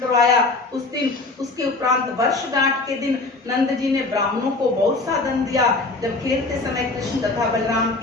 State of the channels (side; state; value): right; quieter; 3.4 dB